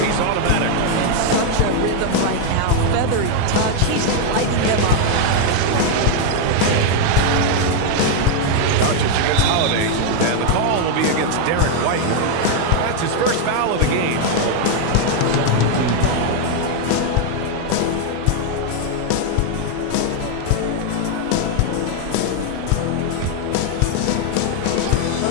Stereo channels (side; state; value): both; different; correlation 0.00